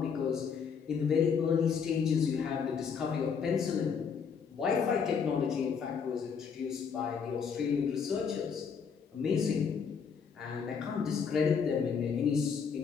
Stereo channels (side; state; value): right; quieter; 6.4 dB